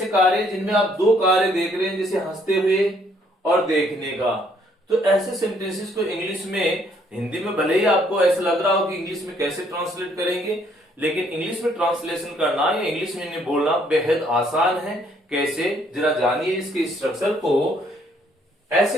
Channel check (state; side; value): normal; both; correlation 0.66